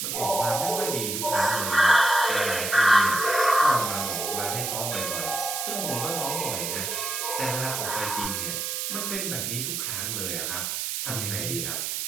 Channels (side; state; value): right; noise; hiss, 2 dB below the sound